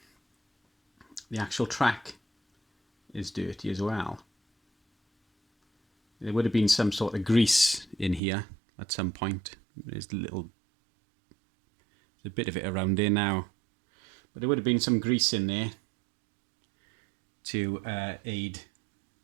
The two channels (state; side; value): drops out; left; at 8.2 s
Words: actual track is dirty as well. There would have been some sort of grease in here at some point, There's a bit of it around there now, but there would have been some grease in there to aid